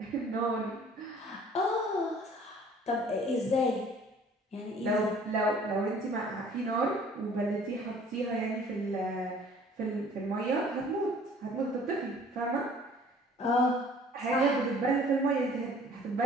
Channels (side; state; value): both; normal; correlation 0.52